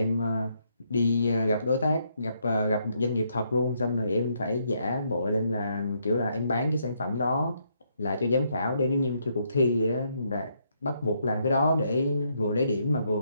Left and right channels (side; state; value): both; inverted; correlation -0.75